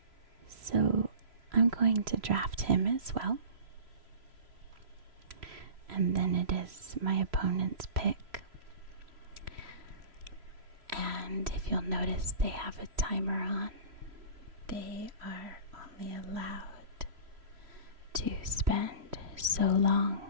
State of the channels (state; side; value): late; left; 3.0 ms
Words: So I'm going to draft him as well. And then it is my opponent's pick. And if you'll notice, they have a timer on. They are only allowed to spend so long